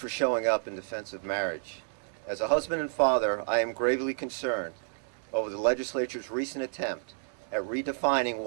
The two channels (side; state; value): left; silent; digital silence